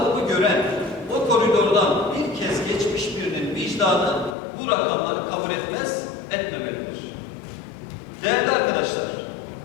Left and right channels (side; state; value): right; drops out; at 4.4 s